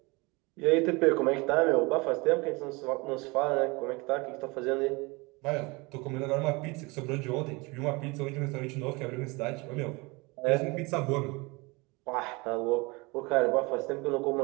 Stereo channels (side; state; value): left; quieter; 26.0 dB